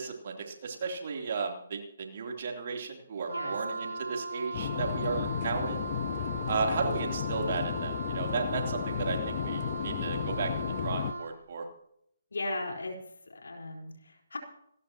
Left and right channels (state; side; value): inverted; both; correlation -0.69